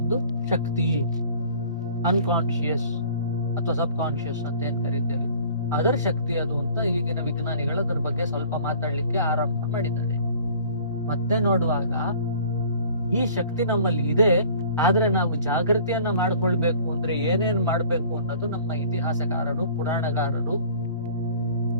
ಶಕ್ತಿ, ಅನ್ಕಾನ್ಶಿಯಸ್ ಅಥವಾ ಸಬ್ ಕಾನ್ಶಿಯಸ್ ಅಂತ ಏನ್ ಕರೀತೇವೆ, ಅದರ ಶಕ್ತಿ ಅದು ಅಂತ ಈಗಿನ ವಿಜ್ಞಾನಿಗಳು ಅದರ ಬಗ್ಗೆ ಸ್ವಲ್ಪ ಮಾತಾಡ್ಲಿಕ್ಕೆ ಆರಂಭ ಮಾಡಿದ್ದಾರೆ. ಮತ್ತೆ ನೋಡುವಾಗ ಈ ಶಕ್ತಿ ನಮ್ಮಲ್ಲಿ ಇದೆ, ಆದ್ರೆ ನಾವು ಜಾಗೃತಿಯನ್ನ ಮಾಡ್ಕೊಳ್ಬೇಕು ಅಂದ್ರೆ ಏನೇನ್ ಮಾಡ್ಬೇಕು ಅನ್ನೋದು ನಮ್ಮ ಇತಿಹಾಸಕಾರರು, ಪುರಾಣಗಾರರು,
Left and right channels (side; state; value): both; inverted; correlation -0.50